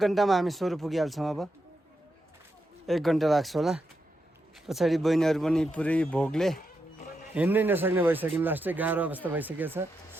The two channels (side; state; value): both; normal; correlation 0.85